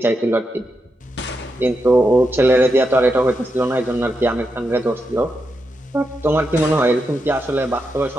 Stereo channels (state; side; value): normal; both; correlation 0.85